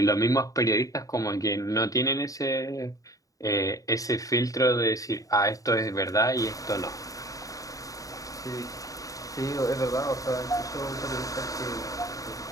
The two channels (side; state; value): right; late; 0.17 ms